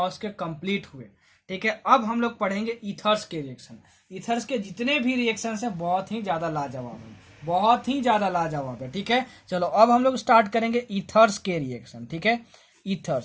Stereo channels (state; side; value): identical; both; correlation 1.00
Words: के कंप्लीट हुए, ठीक है। अब हम लोग पढ़ेंगे ईथर्स के रिएक्शन। ईथर्स के जितने भी रिएक्शन है बहुत ही ज्यादा लाजवाब है, बहुत ही ज्यादा लाजवाब है, ठीक है। चलो अब हम लोग स्टार्ट करेंगे ईथर्स के रिएक्शन, ठीक है।